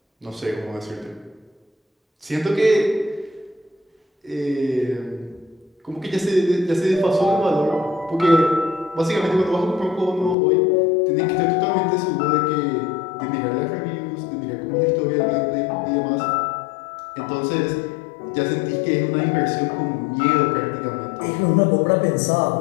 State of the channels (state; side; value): drops out; right; at 10.4 s